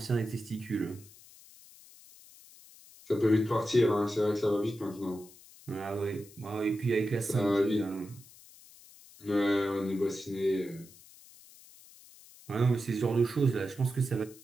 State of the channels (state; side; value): noise; left; hiss, 22 dB below the sound